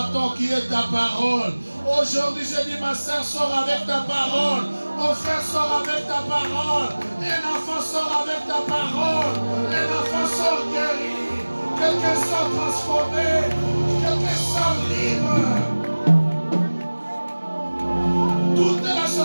qui est ta parole. Aujourd'hui, je dis, ma soeur, sort avec ta parole. Mon frère sort avec ta parole. Un enfant sort avec ta parole. Un enfant sort guéri. Quelqu'un sort transformé. Quelqu'un sort libre. Toute la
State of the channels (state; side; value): inverted; both; correlation -1.00